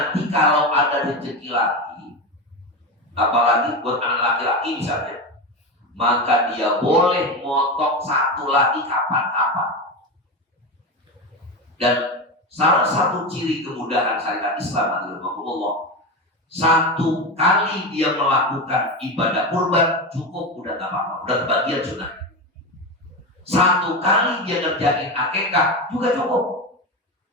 kalau ada rezeki lagi, apalagi buat anak laki-laki misalnya, maka dia boleh motong 1 lagi kapan-kapan. Dan salah satu ciri kemudahan syariat Islam adalah 1 kali dia melakukan ibadah kurban cukup, udah gak apa-apa, udah kebagian sunnah. 1 kali dia ngerjain akikah juga cukup.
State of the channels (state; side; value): normal; both; correlation 0.19